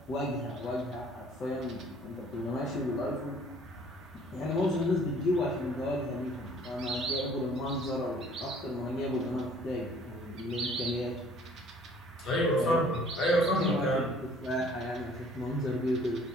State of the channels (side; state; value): both; normal; correlation 0.56